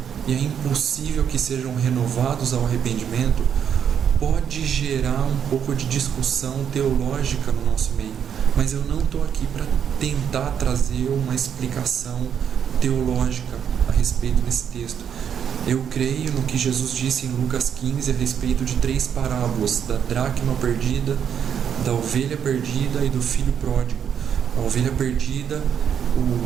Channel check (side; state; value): left; quieter; 8.2 dB